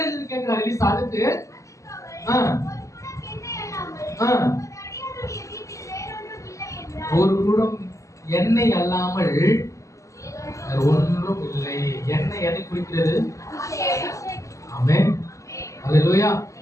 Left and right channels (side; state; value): right; late; 0.16 ms